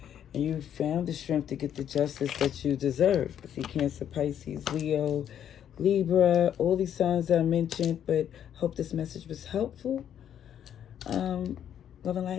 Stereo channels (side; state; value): right; quieter; 9.7 dB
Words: And you found the strength to get the justice that you deserve. See, Cancer, Pisces, Leo, Libra, all these signs I mentioned. But hope this message was helpful. Love and